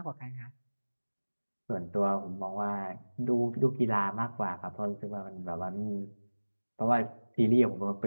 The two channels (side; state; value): both; inverted; correlation -1.00